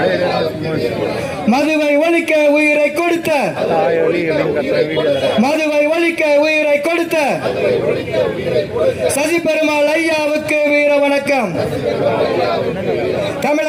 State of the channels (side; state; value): both; identical; correlation 1.00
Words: மதுவை ஒழிக்க உயிரை கொடுத்த, மதுவை ஒழிக்க உயிரை கொடுத்த சசி பெருமாள் ஐயாவுக்கு வீர வணக்கம்.